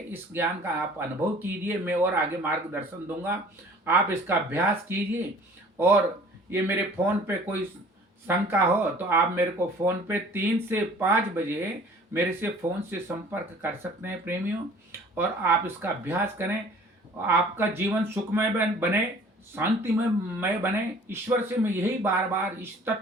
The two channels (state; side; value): normal; both; correlation 0.50